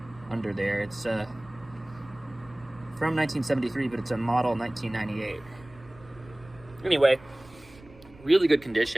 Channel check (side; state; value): right; noise; rumble, 23 dB below the sound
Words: under there. It's from 1973, but it's a model 1998. Anyway, really good